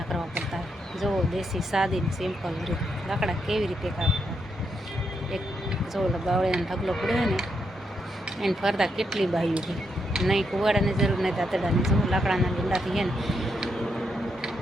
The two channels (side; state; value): both; normal; correlation 0.80